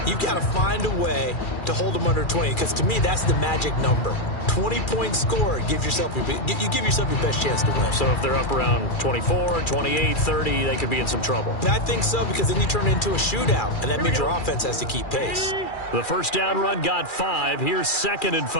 you've got to find a way to hold them under 20. Because to me, that's the magic number. 20 points scored, you give yourself your best chance to win. So if they're up around 24, 28, 30, they could be in some trouble. And I think so, because then you turn it into a shootout, and that means your offense has to keep pace. The first down run got 5. Here's 2nd and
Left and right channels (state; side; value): late; right; 2.4 ms